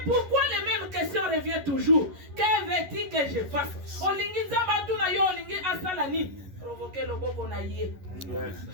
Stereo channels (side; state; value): left; late; 11 ms